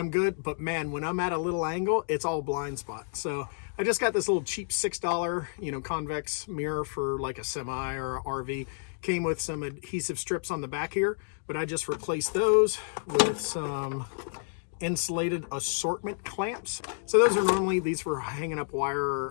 I'm good. But man, when I'm at a little angle, it's all blind spot. So I just got this little cheap $6, convex mirror for like a semi or a RV. Came with some adhesive strips on the back here, but I just replaced those with some insulated assortment clamps. So those are normally these for hanging up wire,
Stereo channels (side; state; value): right; silent; digital silence